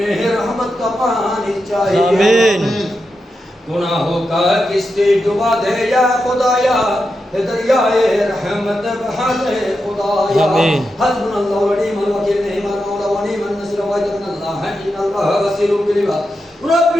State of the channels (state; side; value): normal; both; correlation 0.88